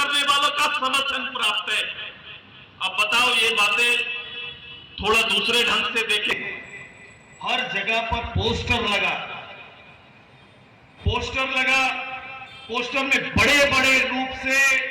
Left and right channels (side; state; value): both; identical; correlation 1.00